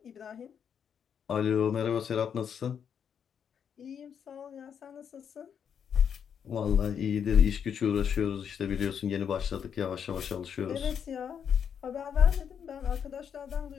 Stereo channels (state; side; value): quieter; right; 7.8 dB